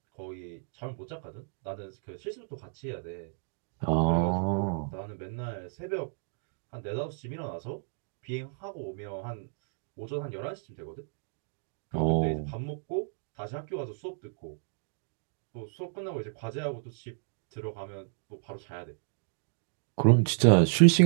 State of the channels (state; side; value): silent; left; digital silence